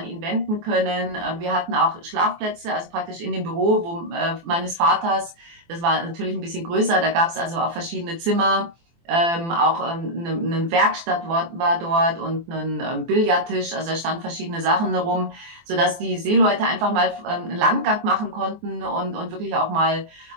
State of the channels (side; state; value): left; late; 24 ms